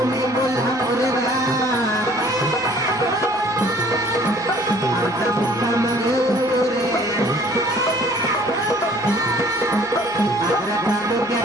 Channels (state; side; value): noise; right; hum, 29 dB below the sound